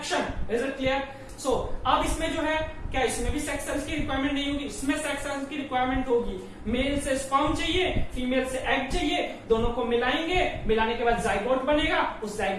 Is it clear? So अब इसमें जो है क्या, इसमें भी सेक्स सेल्स की रिक्वायरमेंट नहीं होगी, इसमें सेक्स सेल्स की रिक्वायरमेंट होगी। मेल से स्पर्म चाहिए, फीमेल से एग चाहिए, दोनों को मिलाएंगे, मिलाने के बाद जाइगोट बनेगा, उस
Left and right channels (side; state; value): both; identical; correlation 1.00